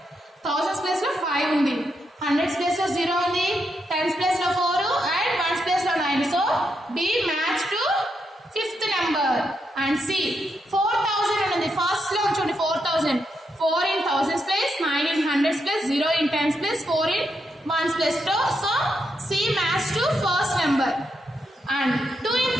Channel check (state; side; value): normal; both; correlation 0.82